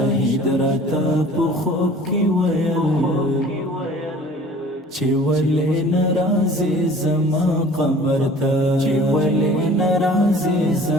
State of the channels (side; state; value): both; normal; correlation 0.47